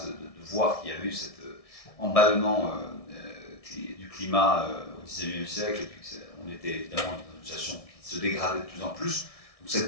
de voir qu'il y avait eu cet emballement du climat au XIXe siècle, et puis on était évidemment dans une situation qui se dégradait de plus en plus. Donc cette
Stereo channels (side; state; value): right; late; 1.6 ms